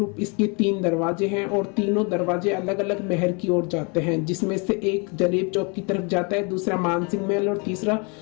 इसके 3 दरवाजे हैं और तीनों दरवाजे अलग अलग महल की ओर जाते हैं, जिसमें से एक जलेब चौक की तरफ जाता है, दूसरा मानसिंह महल और तीसरा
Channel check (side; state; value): right; quieter; 33.0 dB